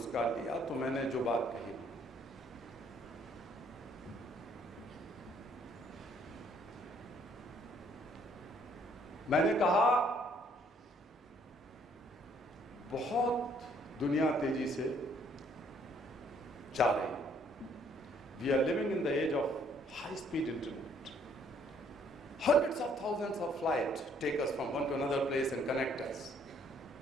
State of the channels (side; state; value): both; normal; correlation 0.64